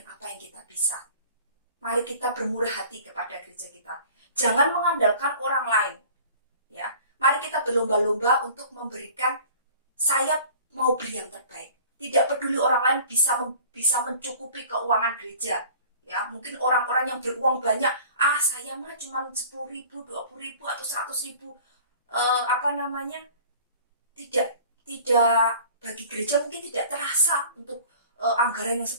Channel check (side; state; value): both; inverted; correlation -0.46